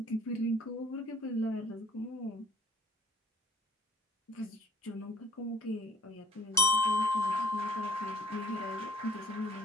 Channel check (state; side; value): normal; both; correlation 0.53